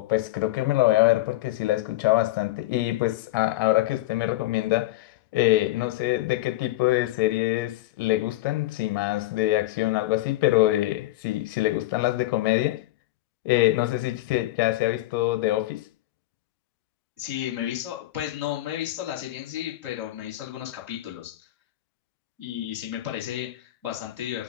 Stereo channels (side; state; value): right; quieter; 16.8 dB